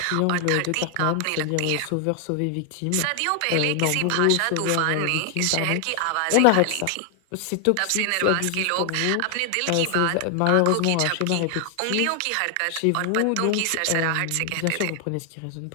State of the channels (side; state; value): both; different; correlation 0.00